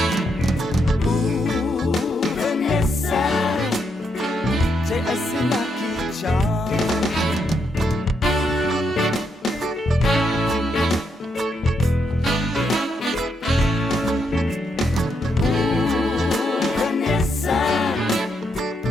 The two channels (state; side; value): normal; both; correlation 0.79